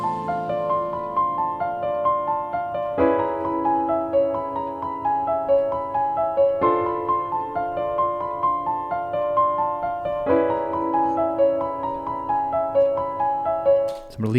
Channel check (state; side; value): identical; both; correlation 1.00